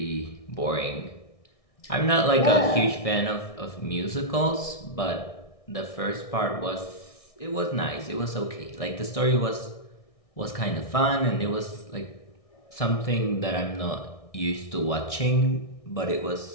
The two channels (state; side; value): late; right; 1.6 ms